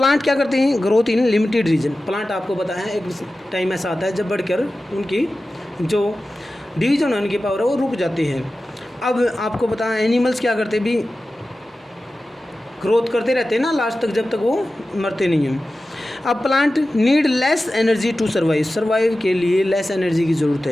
क्या करते हैं? Growth in limited region. Plant आपको पता है एक टाइम ऐसा आता है जब बढ़कर उनकी जो डिवीजन होने की पावर है वो रुक जाती है। अब आपको पता है एनिमल्स क्या करते भी? ग्रोथ करते रहते हैं ना लास्ट तक, जब तक वो मरते नहीं हैं। अब plant need less energy to survive. Survive के लिए लेस एनर्जी की ज़रूरत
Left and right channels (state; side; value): normal; both; correlation 0.94